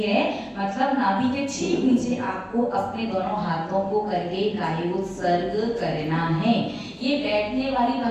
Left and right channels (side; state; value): both; identical; correlation 1.00